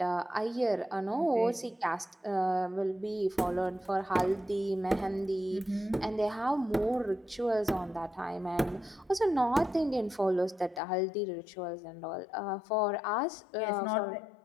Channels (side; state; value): right; drops out; at 10.8 s